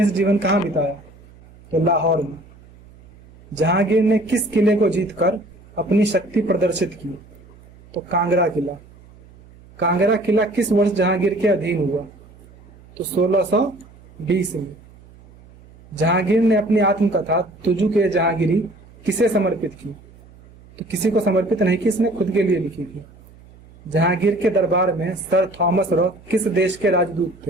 जीवन कहाँ बिताया? तो लाहौर में। जहांगीर ने किस किले को जीतकर अपनी शक्ति प्रदर्शित की? तो कांगड़ा किला। कांगड़ा किला किस वर्ष जहांगीर के अधीन हुआ? तो 1620 में। जहांगीर ने अपनी आत्मकथा तुजुक-ए जहांगीरी किसे समर्पित की? तो किसी को समर्पित नहीं की, इसने खुद के लिए लिखी थी। जहांगीर के दरबार में सर थॉमस रॉ किस देश के राजदूत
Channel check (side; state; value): right; noise; hum, 24 dB below the sound